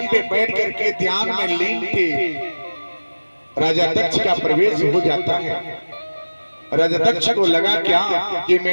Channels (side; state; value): both; inverted; correlation -1.00